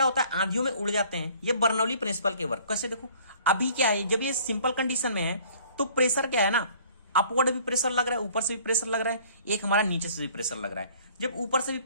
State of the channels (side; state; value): both; inverted; correlation -0.54